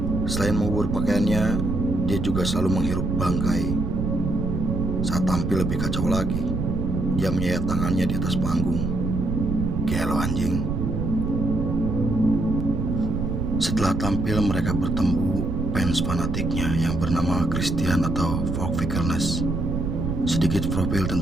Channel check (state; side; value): noise; right; rumble, 1 dB below the sound